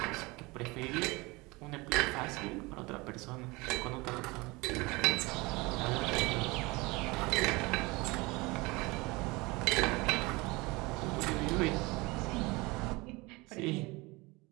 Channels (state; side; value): quieter; left; 24.0 dB